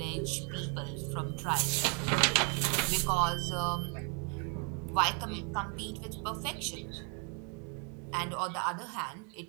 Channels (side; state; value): left; quieter; 37.4 dB